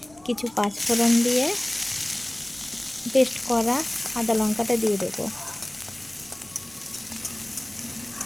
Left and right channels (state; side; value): noise; left; rumble, 28 dB below the sound